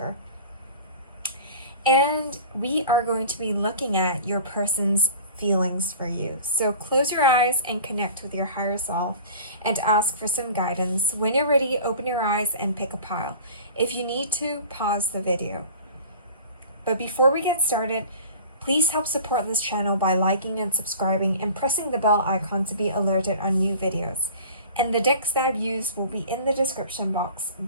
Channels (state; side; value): inverted; both; correlation -0.42